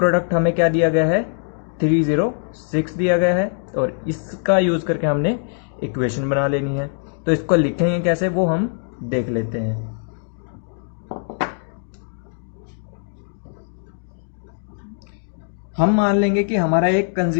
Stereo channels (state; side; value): silent; right; 64 dB below the other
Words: हमें क्या दिया गया है, 306 दिया गया है, और इसका यूज करके हमने इक्वेशन बना लेनी है। तो इसको लिखेंगे कैसे वो हम देख लेते हैं। हम मान लेंगे कि हमारा एक